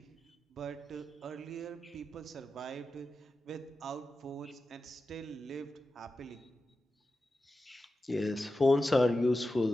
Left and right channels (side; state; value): both; normal; correlation 0.92